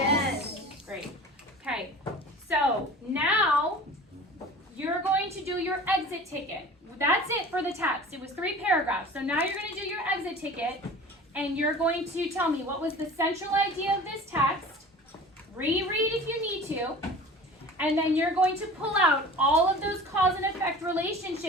Great. Okay. So now you're going to do your exit ticket. That's it for the text. It was 3 paragraphs. So now you're going to do your exit ticket and you're going to tell me what was the central idea of this text. Reread if you need to. And then you're going to pull out all of those cause and effect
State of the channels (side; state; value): both; normal; correlation 0.40